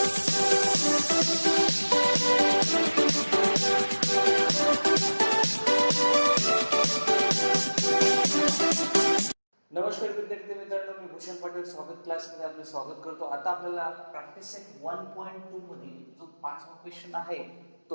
विद्यार्थी मित्रांनो, मी भूषण पाटील स्वागत क्लासमध्ये आपले स्वागत करतो. आता आपल्याला प्रॅक्टिस सेट 1.2 मध्ये जो 5वा क्वेश्चन आहे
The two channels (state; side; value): inverted; both; correlation -1.00